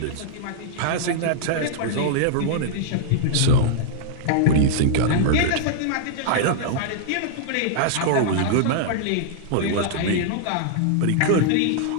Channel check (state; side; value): different; both; correlation -0.01